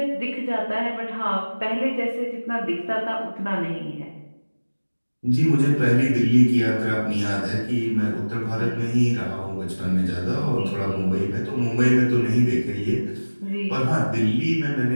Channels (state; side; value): inverted; both; correlation -1.00